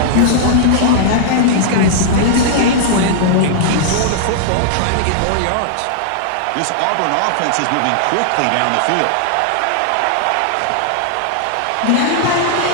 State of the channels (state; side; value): different; both; correlation -0.01